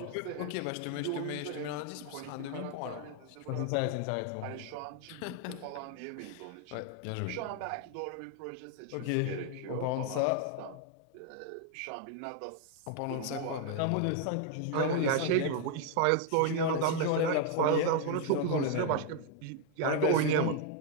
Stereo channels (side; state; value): both; different; correlation 0.00